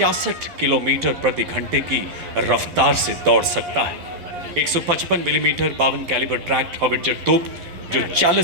किलोमीटर प्रति घंटे की रफ्तार से दौड़ सकता है। 155 मिलीमीटर 52 कैलिबर ट्रैक्ट हॉविट्जर तोप जो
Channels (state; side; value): late; left; 11 ms